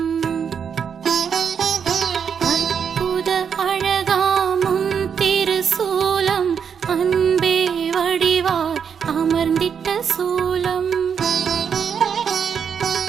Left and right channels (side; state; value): left; quieter; 7.1 dB